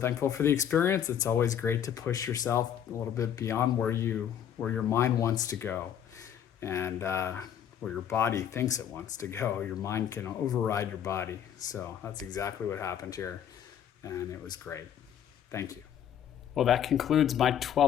for the experience. It's always great to push yourself a little bit beyond where your mind wants to go, and where your body thinks it wants to go. Your mind can override your body. So that's exactly what happened here, and it was great. Thank you. Well, that concludes my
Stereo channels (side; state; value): right; quieter; 9.5 dB